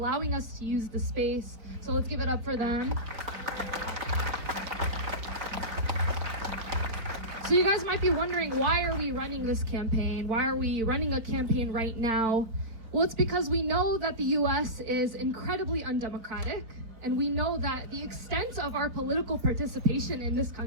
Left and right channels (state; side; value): late; left; 4.3 ms